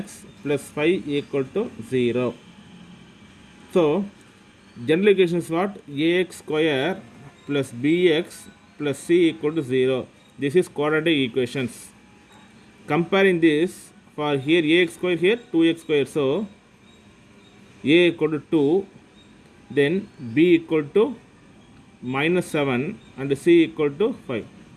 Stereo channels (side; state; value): both; identical; correlation 1.00